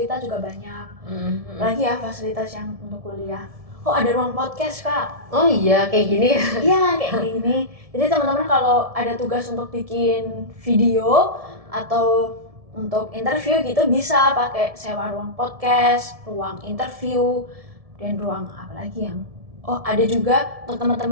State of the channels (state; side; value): late; left; 1.7 ms